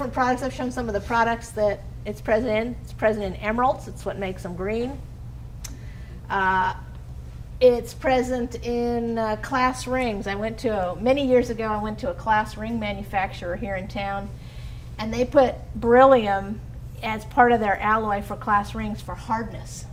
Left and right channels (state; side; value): identical; both; correlation 1.00